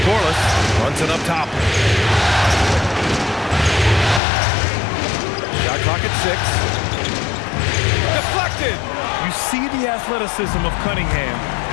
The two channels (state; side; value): drops out; right; at 4.2 s